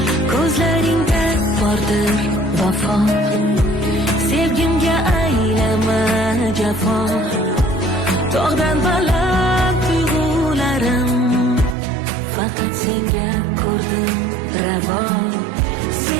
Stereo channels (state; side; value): drops out; left; at 11.8 s